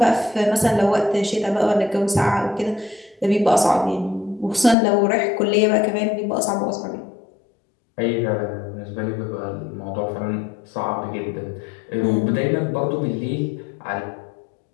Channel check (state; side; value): drops out; right; at 4.8 s